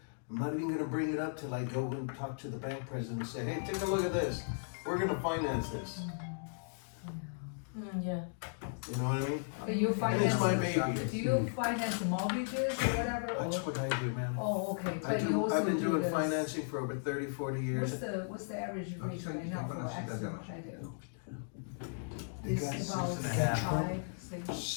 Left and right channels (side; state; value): right; silent; digital silence